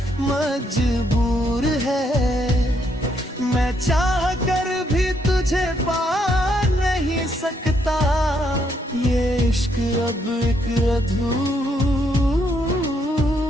मजबूर है। मैं चाह कर भी तुझे पा नहीं सकता, ये इश्क अब एक अधूरा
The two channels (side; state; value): both; normal; correlation 0.74